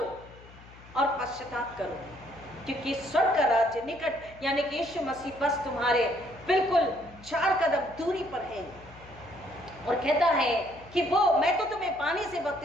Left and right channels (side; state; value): left; noise; hum, 21 dB below the sound